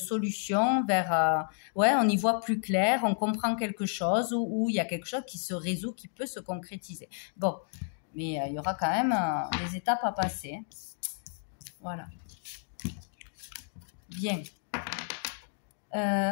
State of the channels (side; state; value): right; silent; 57 dB below the other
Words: vers... ouais, on y voit plus clair, on comprend quelque chose, ou il y a quelque chose qui se résout, qui peut se concrétiser. Bon, mais il y aura quand même des étapes à passer. Hein. Voilà. Bien.